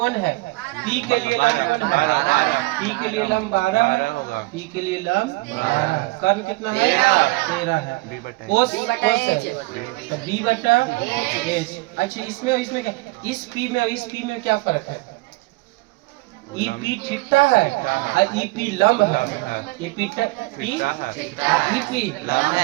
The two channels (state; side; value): quieter; left; 23.1 dB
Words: है? पी के लिए लंब कौन है? 12। पी के लिए लंब 12 होगा। पी के लिए लंब 12। कर्ण कितना है? 13 है। बी बटा कोस बी बटा एच। तो बी बटा एच। अच्छा, इसमें क्या? इस पी में और इस पी में क्या फर्क है? ई पी थीटा है और ई पी लंब है। ई पी थीटा है। ई पी लंब